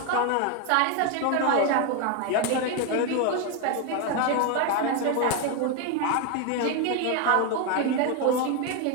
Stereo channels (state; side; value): different; both; correlation 0.01